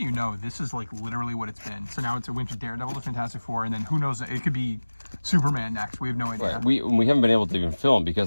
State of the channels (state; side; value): inverted; both; correlation -1.00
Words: know, this is like literally what it's been. So now it's a went to Daredevil to Fantastic Four, and then who knows? It could be Superman next. We have no idea. Right. We haven't been able to even film